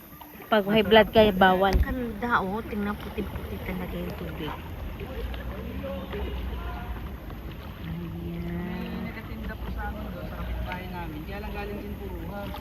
Pag high blood kaya bawal. Ganda, oh. Tingnan puti-puti talaga yung tubig. May nagatinda po sa amin doon, sa kapitbahay namin. Kaya lang galing din puruhan.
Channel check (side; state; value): both; identical; correlation 1.00